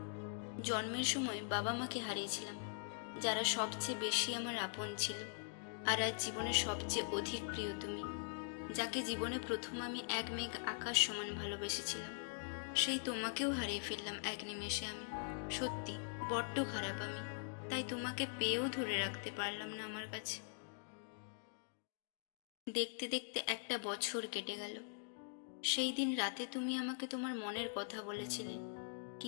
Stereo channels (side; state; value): right; silent; digital silence